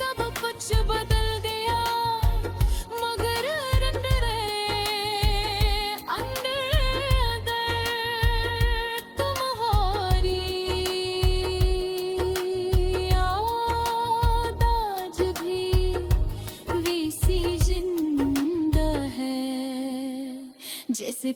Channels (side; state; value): both; identical; correlation 1.00